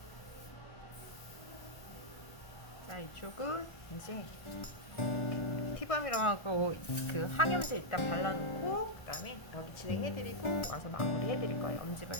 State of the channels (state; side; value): late; right; 1.4 ms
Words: 자, 이쪽은 이제 티밤이라고 하고 그 항염제 일단 발라놓고 그다음에 여기 진행해드리고 와서 마무리해드릴 거예요.